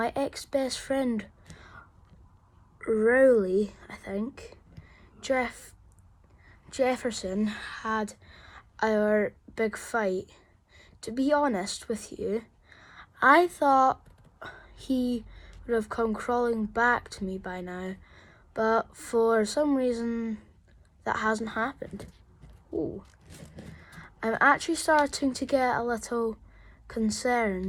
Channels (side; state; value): both; identical; correlation 1.00